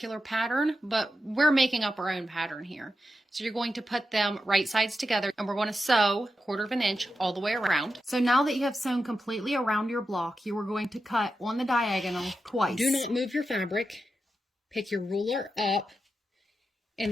pattern, but we're making up our own pattern here. So you're going to put them right sides together, and we're going to sew 1/4 inch all the way around. So now that you have sewn completely around your block, you are going to cut on the diagonal twice. Do not move your fabric. Pick your ruler up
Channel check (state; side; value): normal; both; correlation 0.89